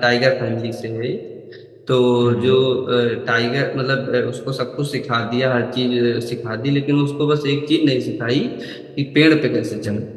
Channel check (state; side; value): identical; both; correlation 1.00